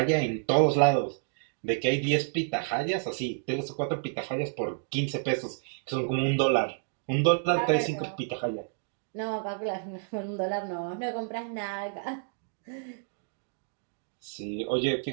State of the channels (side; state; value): left; silent; digital silence